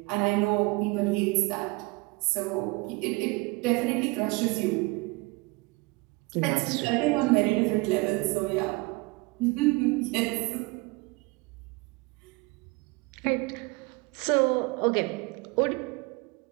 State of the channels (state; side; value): quieter; left; 25.3 dB